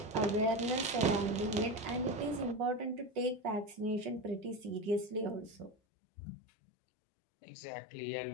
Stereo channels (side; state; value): right; drops out; at 5.8 s